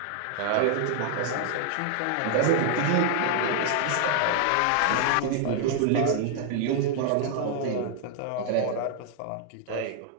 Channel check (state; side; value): different; both; correlation 0.00